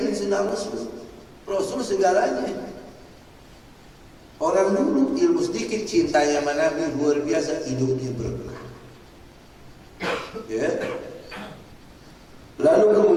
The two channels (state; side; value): identical; both; correlation 1.00